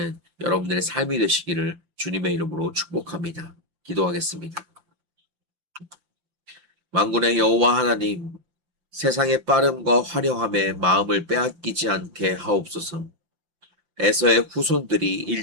여러분들의 삶이 되시기를 주님의 이름으로 축복합니다. 기도하겠습니다. 만군의 여호와 하나님, 세상의 빠름과 화려함에 마음을 빼앗기지 않게 하옵소서. 에서의 후손들이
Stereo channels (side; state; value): left; late; 5.8 ms